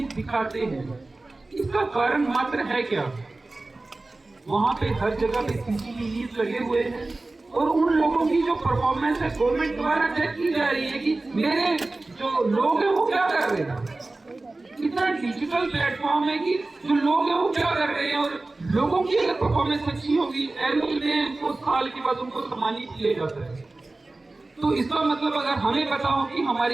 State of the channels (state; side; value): quieter; left; 3.1 dB